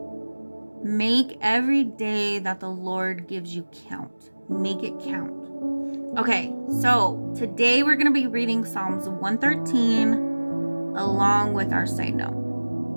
Make every day that the Lord gives you count. Make it count. Okay, so today we're going to be reading Psalms 113 along with our side note.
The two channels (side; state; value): both; inverted; correlation -1.00